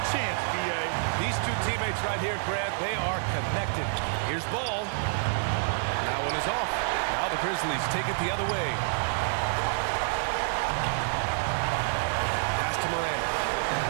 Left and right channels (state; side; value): silent; left; digital silence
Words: chance, B.A. These two teammates right here, Grant, they are connected. Here's Ball. That one is off. Now the Grizzlies take it the other way. Pass to Morant.